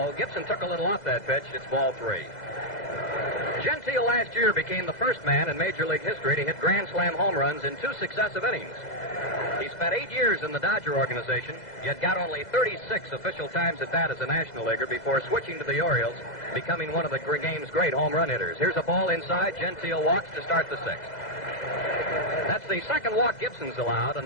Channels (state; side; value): late; right; 2.0 ms